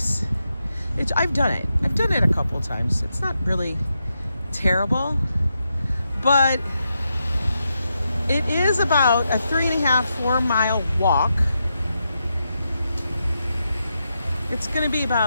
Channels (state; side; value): inverted; both; correlation -0.85